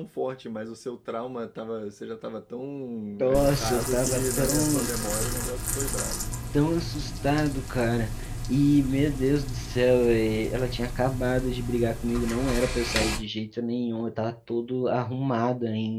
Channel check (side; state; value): both; identical; correlation 1.00